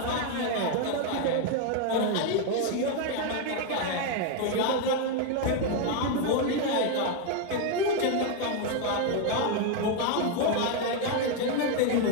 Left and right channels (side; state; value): both; different; correlation 0.01